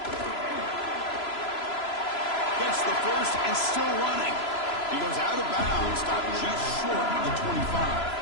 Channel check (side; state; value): right; late; 3.0 ms